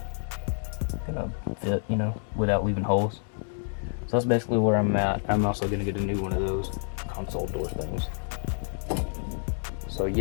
fit, without leaving holes. So that's basically where I'm at. I'm also gonna get a new one of those console door things. So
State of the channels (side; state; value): right; silent; digital silence